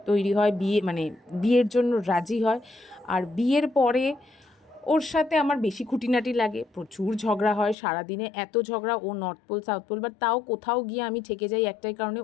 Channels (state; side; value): drops out; right; at 7.8 s